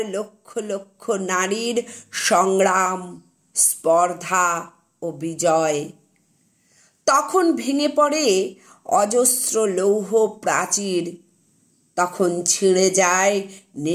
লক্ষ লক্ষ নারীর সংগ্রাম, স্পর্ধা ও বিজয়। তখন ভেঙে পড়ে অজস্র লৌহ প্রাচীর, তখন ছিঁড়ে যায়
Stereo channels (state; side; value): identical; both; correlation 1.00